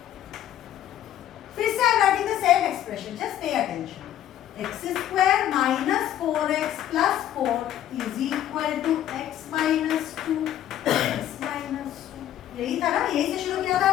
फिर से I am writing the same expression, just pay attention. x square minus 4x plus 4 is equal to x minus 2 x minus 2. यही था ना, यही से शुरू किया था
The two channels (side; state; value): right; quieter; 11.7 dB